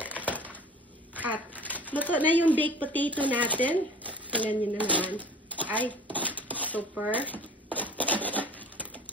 at luto na yung baked potato natin. Tingnan nyo na naman. Ay, super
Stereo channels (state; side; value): normal; both; correlation 0.42